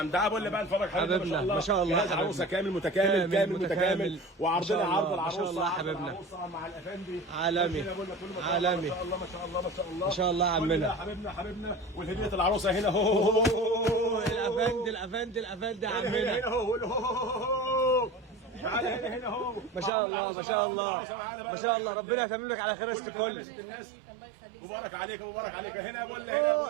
تعال بقول لي بقى نتفرج حبيبنا ما شاء الله، ما شاء الله جهاز عروسه كامل متكامل متكامل، وعرضنا عرض العروسه ما شاء الله عرض حبيبنا، العروسه مع الافندي عالمي عالمي، ما شاء الله ما شاء الله ما شاء الله ما شاء الله عمنا حبيبنا والهديه العروسه هنا هو الافندي هنا عمنا. هو تعالى هنا هو ما شاء الله ما شاء الله ما شاء الله، ربنا يتمم لك على خير كل الناس. مبارك عليك مبارك عليك. هنا بقول هنا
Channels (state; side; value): drops out; left; at 19.9 s